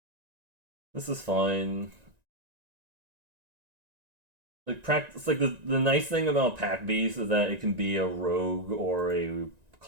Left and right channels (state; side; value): late; left; 1.9 ms